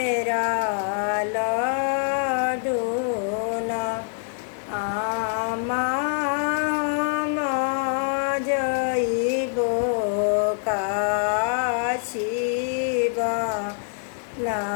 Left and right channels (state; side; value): silent; right; digital silence